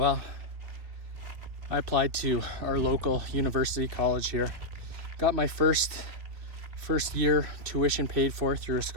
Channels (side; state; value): left; late; 3.2 ms